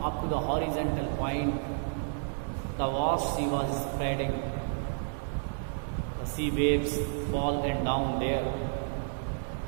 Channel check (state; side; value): silent; left; digital silence